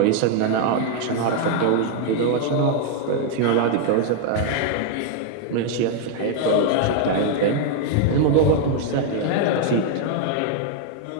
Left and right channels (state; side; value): different; both; correlation 0.00